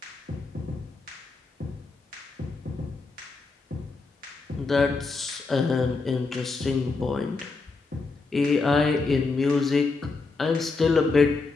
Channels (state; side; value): quieter; right; 4.0 dB